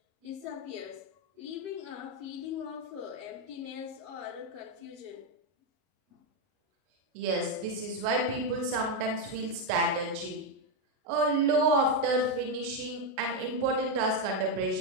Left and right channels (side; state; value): left; late; 33 ms